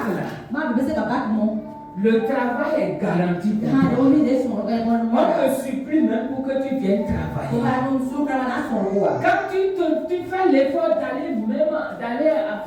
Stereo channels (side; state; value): both; identical; correlation 1.00